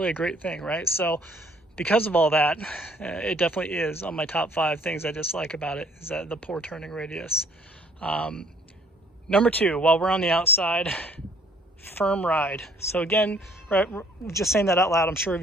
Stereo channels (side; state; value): both; normal; correlation 0.60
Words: a great thing, right? So because of all that, it definitely is on my top 5 things I dislike about it, is that the poor turning radius. Number 2, while we're on the outside, firm ride. So again, right, just saying that out loud, I'm sure